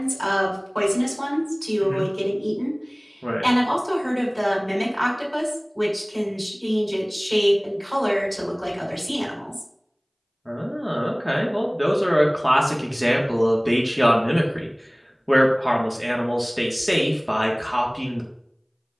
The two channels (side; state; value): both; identical; correlation 1.00